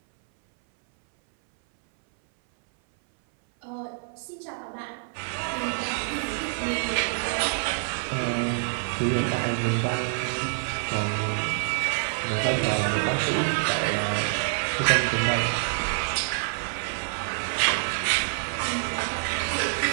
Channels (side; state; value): left; silent; 59 dB below the other